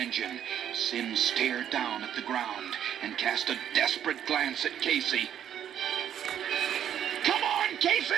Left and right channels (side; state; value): left; quieter; 9.8 dB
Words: Sim stared down at the ground and cast a desperate glance at Casey. "Come on,